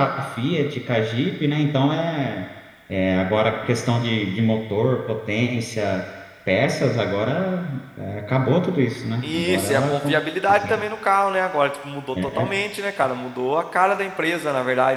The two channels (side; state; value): both; identical; correlation 1.00